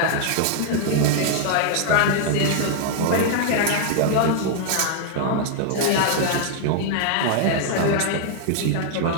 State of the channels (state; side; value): different; both; correlation 0.00